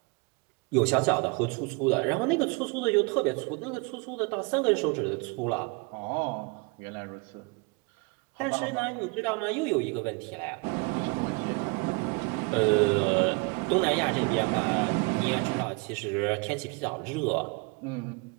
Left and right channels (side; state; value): left; quieter; 30.0 dB